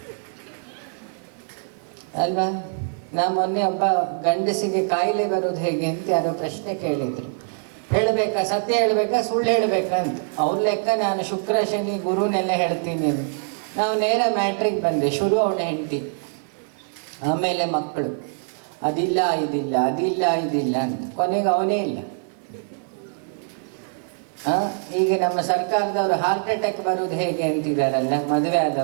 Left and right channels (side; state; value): left; silent; digital silence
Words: ಅಲ್ವಾ. ಮೊನ್ನೆ ಒಬ್ಬ ಗಂಡಸಿಗೆ ಕಾಯಿಲೆ ಬರೋದು ಹೇಗೆ ಅಂತ ಯಾರೋ ಪ್ರಶ್ನೆ ಕೇಳಿದ್ರು. ಹೇಳಬೇಕಾ, ಸತ್ಯ ಹೇಳಬೇಕಾ, ಸುಳ್ಳು ಹೇಳಬೇಕಾ ಅಂತ. ಅವ್ರ ಲೆಕ್ಕ ನಾನು ಶುಕ್ರ ಶನಿ ಗುರುನೆಲ್ಲ ಹೇಳ್ತೀನಿ. ನಾವು ನೇರ ಮ್ಯಾಟ್ರಿಗೆ ಬಂದೆ. ಶುರು ಅವನ ಹೆಂಡತಿ, ಆಮೇಲೆ ಮಕ್ಕಳು, ಅದಿಲ್ಲ ಇದಿಲ್ಲ, ಅದಿಲ್ಲ ಇದಿಲ್ಲ ಅಂತ. ಕೊನೆಗೆ ಅವನೇ ಇಲ್ಲ. ಈಗ ನಮ್ಮ ಸರ್ಕಾರದವರು ಹಾರ್ಟ್ ಅಟ್ಯಾಕ್ ಬರೋದು ಹೇಗೆ ಅಂತಿದ್ದಾರಲ್ಲ ಮದುವೆ